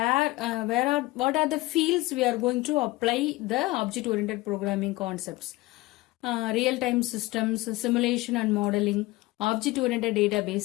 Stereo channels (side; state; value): right; quieter; 20.3 dB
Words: are the fields we are going to apply the object-oriented programming concepts. Real-time systems, simulation and modeling, object-oriented